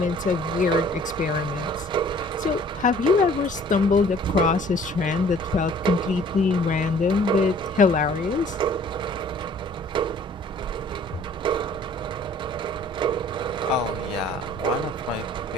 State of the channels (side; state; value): both; normal; correlation 0.54